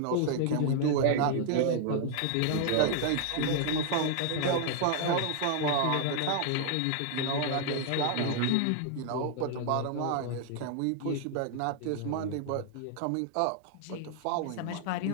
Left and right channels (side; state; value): both; different; correlation 0.00